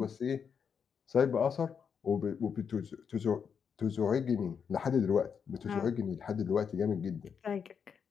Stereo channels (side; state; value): right; quieter; 6.8 dB